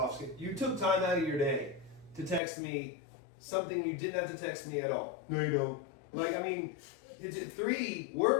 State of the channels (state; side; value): drops out; right; at 2.4 s